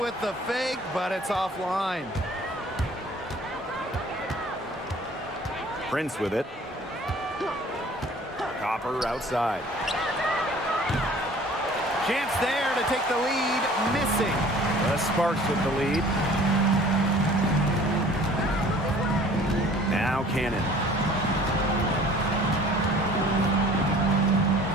the fake, but it's offline. Prince with it. Copper outside. Chance there to take the lead. Missing. The Sparks with the lead. Now Cannon.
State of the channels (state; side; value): normal; both; correlation 0.50